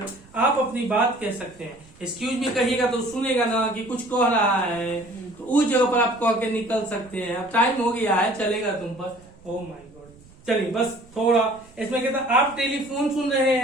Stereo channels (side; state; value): right; noise; rumble, 25 dB below the sound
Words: आप अपनी बात कह सकते हैं। एक्सक्यूज मी कहिएगा तो सुनेगा ना कि कुछ कह रहा है, तो उस जगह पर आप कह के निकल सकते हैं। अब टाइम हो गया है, चलेगा तुम पर। ओ माय गॉड, चलिए बस थोड़ा इसमें कहता आप टेलीफोन सुन रहे